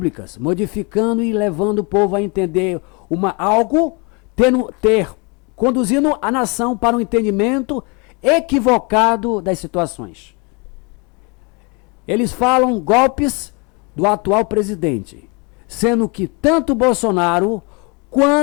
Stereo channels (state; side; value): quieter; right; 31.0 dB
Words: modificando e levando o povo a entender algo, conduzindo a nação para um entendimento equivocado das situações. Eles falam golpes do atual presidente, sendo que tanto Bolsonaro